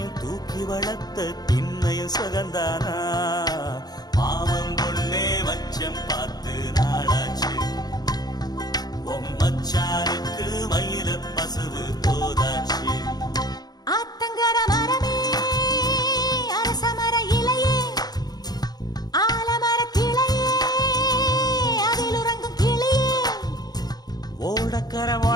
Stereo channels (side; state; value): right; late; 0.19 ms